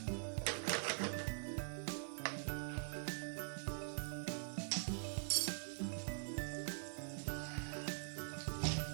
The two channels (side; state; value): left; silent; digital silence